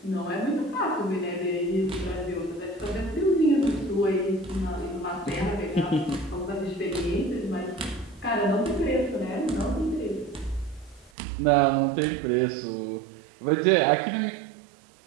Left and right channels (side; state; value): left; drops out; at 11.1 s